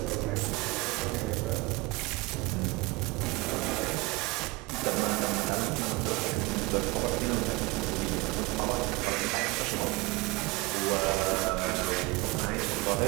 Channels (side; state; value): left; quieter; 23.4 dB